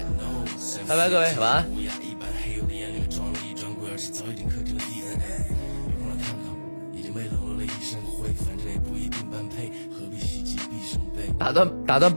拜拜，各位，晚安。打断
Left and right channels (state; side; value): inverted; both; correlation -1.00